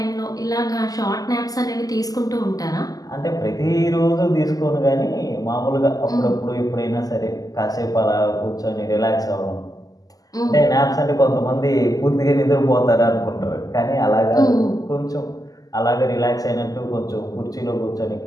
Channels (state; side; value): late; right; 0.17 ms